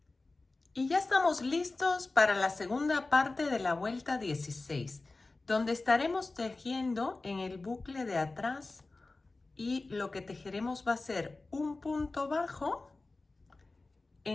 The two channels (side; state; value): right; quieter; 3.3 dB